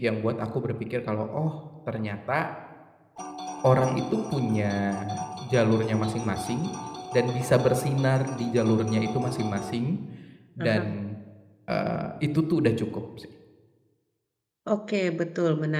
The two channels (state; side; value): identical; both; correlation 1.00